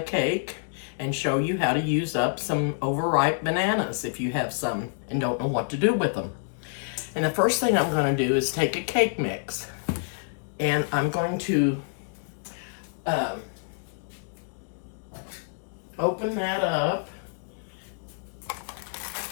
cake and show you how to use up some overripe bananas if you have some and don't know what to do with them. And the first thing I'm going to do is take a cake mix and I'm going to open that up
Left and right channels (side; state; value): right; silent; digital silence